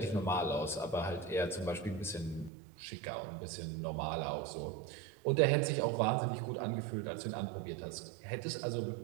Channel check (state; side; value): drops out; left; at 2.5 s